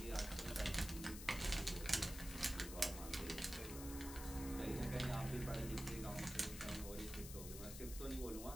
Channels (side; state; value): left; noise; hiss, 9 dB below the sound